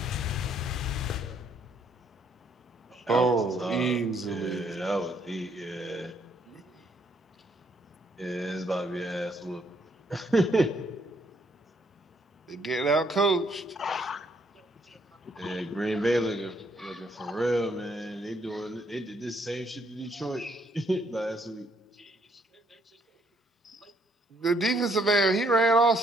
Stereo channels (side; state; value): both; normal; correlation 0.69